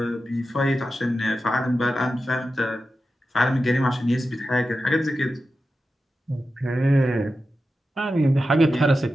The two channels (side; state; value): both; normal; correlation 0.91